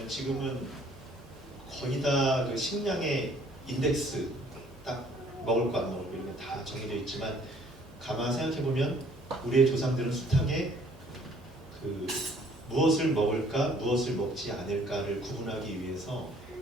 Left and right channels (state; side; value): normal; both; correlation 0.59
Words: 지금은 거의 다 그 식량의 인덱스 딱 먹을 거 안 먹을 거 이런 게 다 정해져 있지만 가만 생각해 보면 우리의 조상들은 숱하게 그 무엇을 먹을까 무엇을 먹지 않을까를 구분하기 위해서